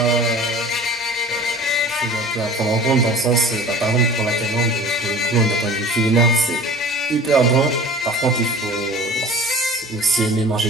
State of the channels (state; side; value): normal; both; correlation 0.43